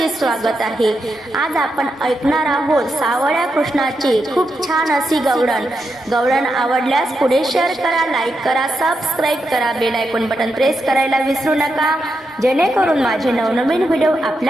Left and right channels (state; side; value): normal; both; correlation 0.85